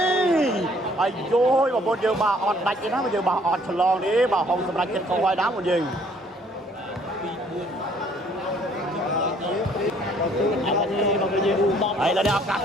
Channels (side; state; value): both; normal; correlation 0.61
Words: ះអាយយបងប្អូនយើងបាទអត់ដាច់ទេណាបងយើងបាទអត់ឆ្លងទេបាទហុងសម្រាប់ចិត្តកោហើយណាបងយើង ត នេះបងយើងបោក ហើយឡើយឱកាស